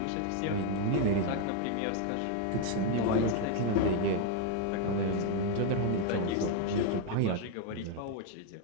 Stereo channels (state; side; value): different; both; correlation 0.00